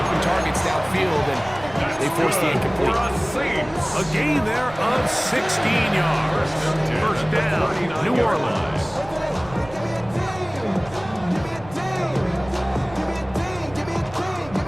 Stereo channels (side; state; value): right; noise; rumble, 18 dB below the sound